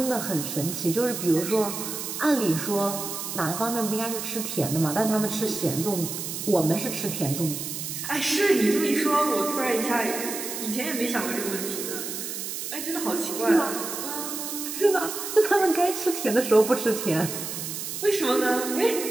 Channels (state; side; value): noise; right; hiss, 6 dB below the sound